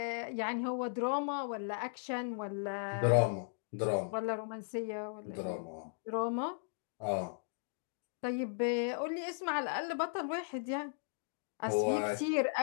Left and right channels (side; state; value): right; silent; digital silence